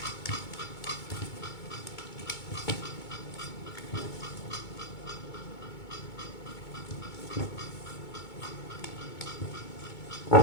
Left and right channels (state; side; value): late; right; 2.2 ms